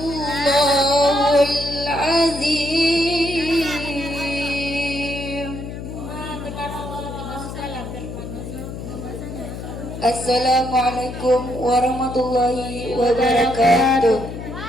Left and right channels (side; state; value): left; noise; hum, 9 dB below the sound